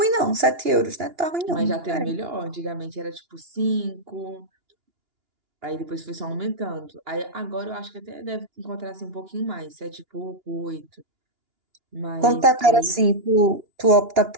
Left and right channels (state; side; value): late; left; 2.9 ms